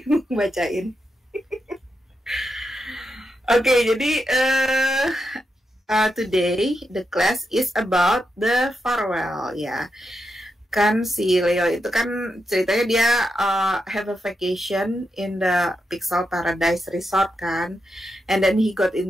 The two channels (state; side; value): normal; both; correlation 0.86